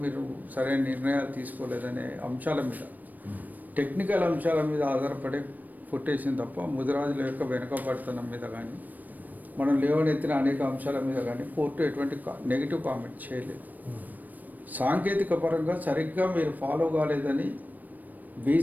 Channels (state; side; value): late; left; 0.085 ms